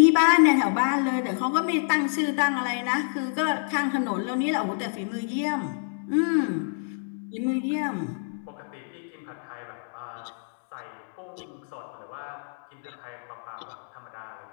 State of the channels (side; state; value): right; silent; digital silence